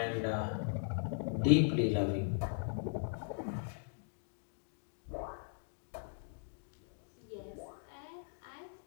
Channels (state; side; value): silent; right; digital silence